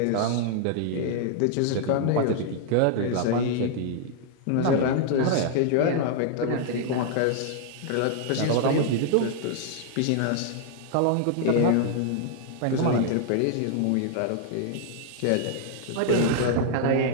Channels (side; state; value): both; different; correlation -0.01